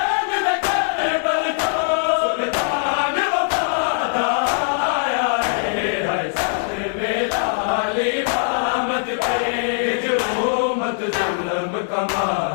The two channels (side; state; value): right; silent; digital silence